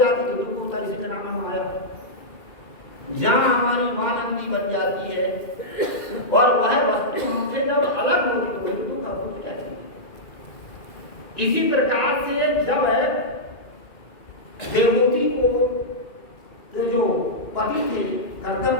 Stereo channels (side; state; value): right; late; 2.4 ms